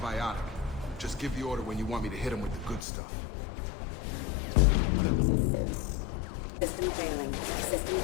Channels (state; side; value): drops out; right; at 2.9 s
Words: Just give the order when you want me to hit them with the good stuff. System failing. System